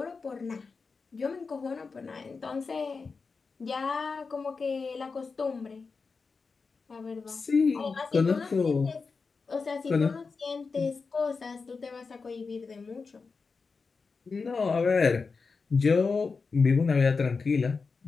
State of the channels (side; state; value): right; quieter; 4.7 dB